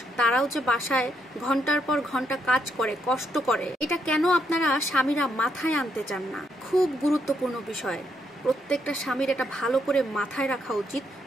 তারাও যে বাসায় ঘন্টার পর ঘন্টা কাজ করে, কষ্ট করে, এটা কেন আপনারা স্বামীরা মাথায় আনতে চান না? খুব গুরুত্বপূর্ণ বিষয়, প্রত্যেকটা স্বামীর এটা ভালো করে মাথায় রাখা উচিত,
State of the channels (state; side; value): normal; both; correlation 0.76